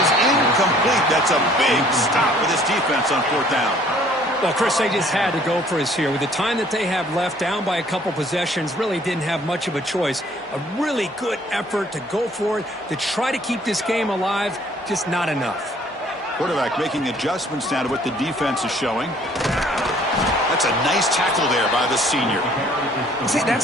incomplete. That's a big stop for this defense on 4th down. Well, Chris, they just had to go for us here. With the time that they have left, down by a couple possessions, really didn't have much of a choice. A really good effort to go for it, to try to keep this game alive, just not enough. Quarterback making adjustments now to what the defense is showing. That's a nice tackle there by the senior. See,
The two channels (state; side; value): normal; both; correlation 0.58